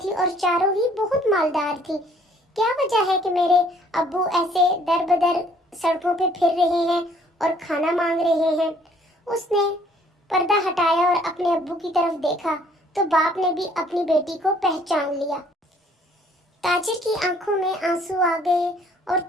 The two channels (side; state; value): both; normal; correlation 0.60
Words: और चारों ही बहुत मालदार थी। क्या वजह है कि मेरे अब्बू ऐसे दर बदर सड़कों पे फिर रहे हैं और खाना मांग रहे हैं? उसने पर्दा हटाया और अपने अब्बू की तरफ देखा तो बाप ने भी अपनी बेटी को पहचान लिया। ताजिर की आंखों में आंसू आ गए और